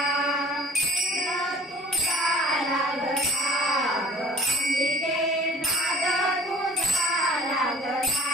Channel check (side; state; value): both; normal; correlation 0.50